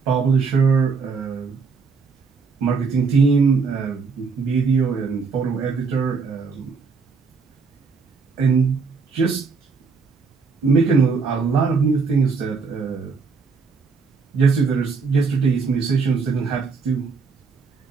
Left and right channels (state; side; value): quieter; left; 5.0 dB